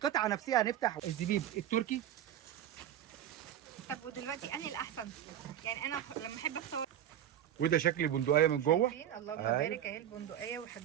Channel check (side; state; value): left; quieter; 10.9 dB